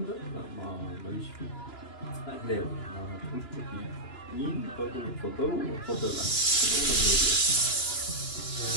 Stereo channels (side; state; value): right; late; 2.9 ms